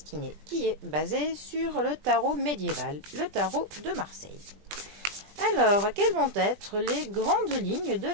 qui est basé sur le tarot médiéval, le tarot de Marseille. Alors, quelles vont être les grandes lignes de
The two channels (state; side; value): late; left; 20 ms